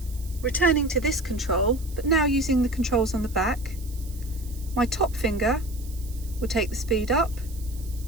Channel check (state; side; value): noise; right; hiss, 19 dB below the sound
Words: returning to this control, but now using the controls on the back, my top finger will take the speed up,